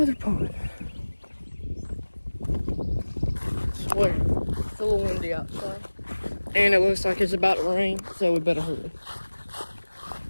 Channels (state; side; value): inverted; both; correlation -1.00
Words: other pond. I swear, it's a little windy outside. And it looks like it's about to rain, so we better hurry.